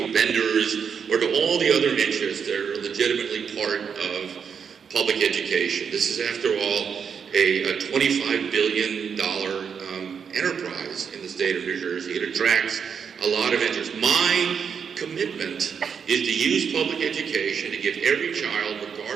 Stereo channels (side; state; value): left; quieter; 6.8 dB